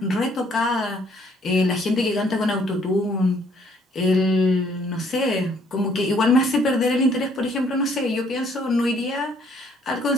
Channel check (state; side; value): normal; both; correlation 0.64